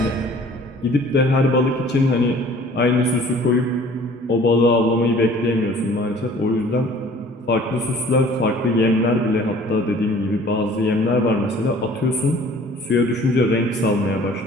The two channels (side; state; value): both; normal; correlation 0.51